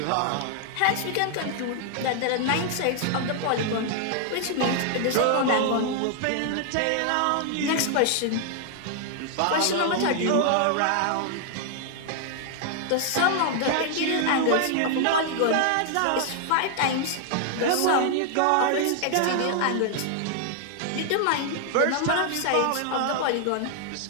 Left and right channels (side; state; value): both; different; correlation 0.00